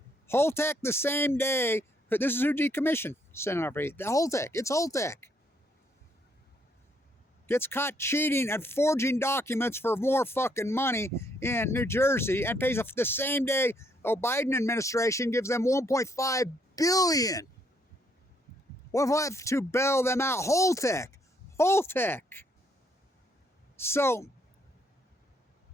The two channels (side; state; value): both; normal; correlation 0.71